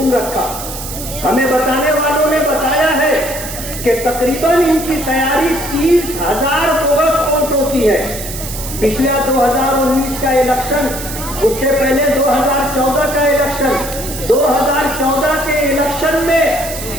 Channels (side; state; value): right; noise; hiss, 9 dB below the sound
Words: رکھا۔ ہمیں بتانے والوں نے بتایا ہے کہ تقریباً ان کی تیاری 30,000 بوگس ووٹ ہوتی ہے۔ پچھلا 2019 کا الیکشن، اس سے پہلے 2014 کا الیکشن، 2014 کے الیکشن میں